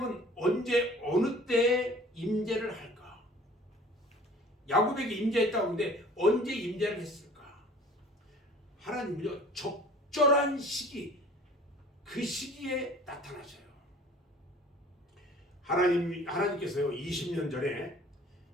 언제 어느 때에 임재를 할까? 야곱에게 임재했다고 하는데 언제 임재를 했을까? 하나님은요, 적절한 시기, 그 시기에 나타나셔요. 하나님께서요, 20년 전에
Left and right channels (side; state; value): both; normal; correlation 0.48